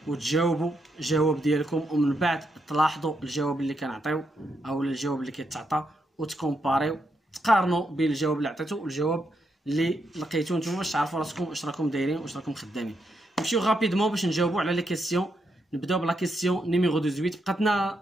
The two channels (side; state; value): both; normal; correlation 0.81